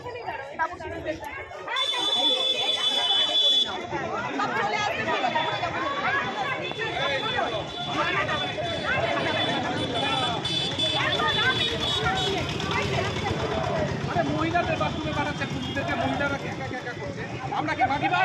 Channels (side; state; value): both; identical; correlation 1.00